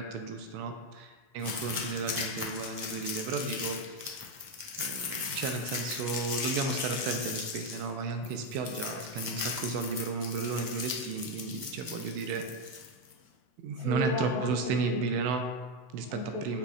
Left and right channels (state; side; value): late; left; 16 ms